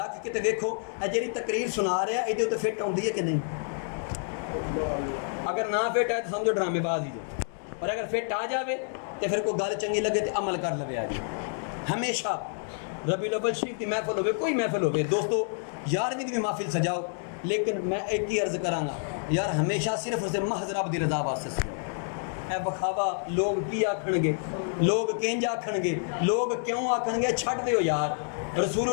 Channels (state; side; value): silent; right; digital silence